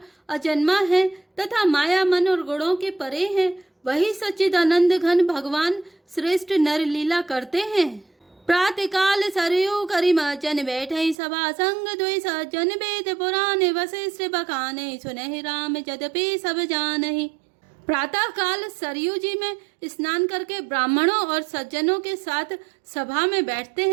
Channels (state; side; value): drops out; left; at 11.2 s